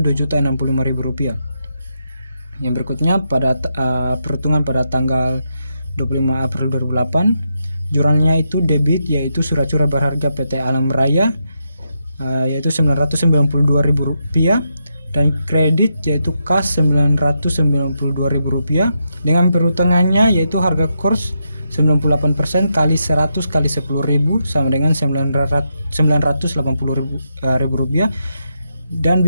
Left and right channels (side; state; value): both; inverted; correlation -0.83